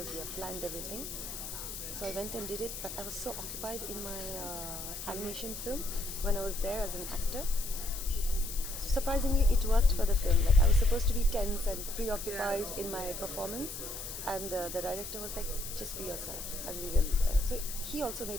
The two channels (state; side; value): noise; left; hiss, 8 dB below the sound